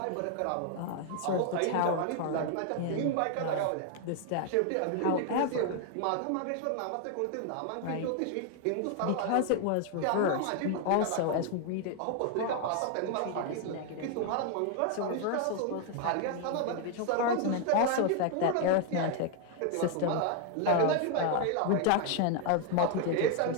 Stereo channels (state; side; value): different; both; correlation 0.00